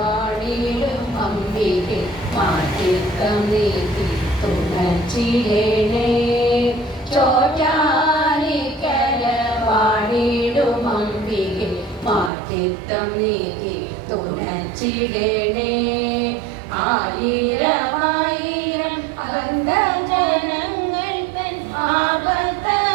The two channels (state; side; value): drops out; left; at 12.3 s